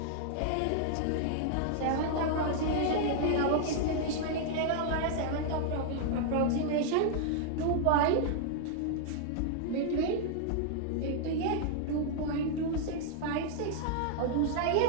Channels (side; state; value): both; different; correlation 0.00